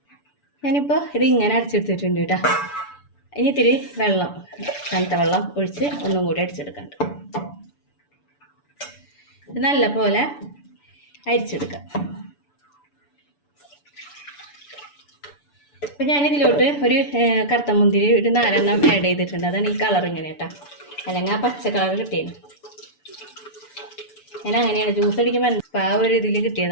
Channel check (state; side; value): late; right; 6.9 ms